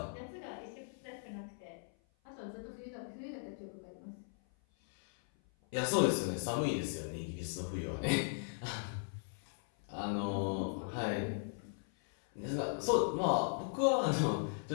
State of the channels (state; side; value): silent; right; 52 dB below the other